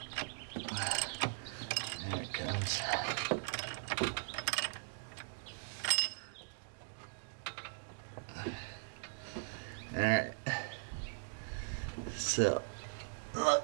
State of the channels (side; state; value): left; silent; digital silence